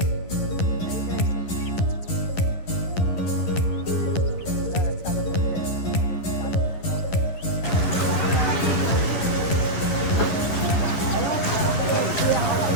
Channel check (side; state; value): right; late; 11 ms